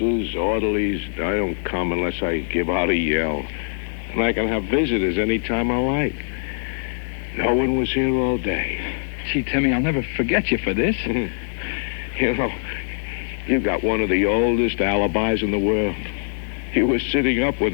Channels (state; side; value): silent; right; digital silence